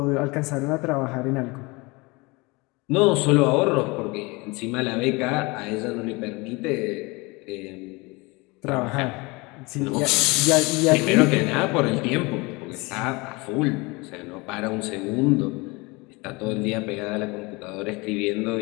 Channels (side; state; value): right; quieter; 25.4 dB